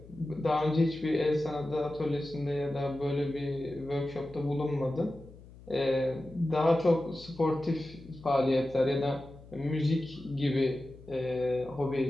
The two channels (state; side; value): noise; left; hum, 20 dB below the sound